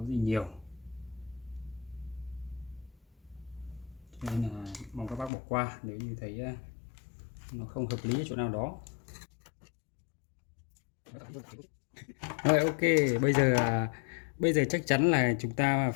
nhiều, cho nên là mong các bác bỏ qua nếu như thấy nó không hợp lý ở chỗ nào đó. Rồi, ok, bây giờ chắc chắn là chúng ta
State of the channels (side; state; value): right; drops out; at 5.3 s